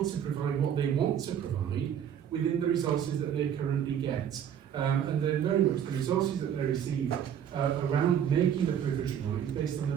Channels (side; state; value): left; quieter; 9.1 dB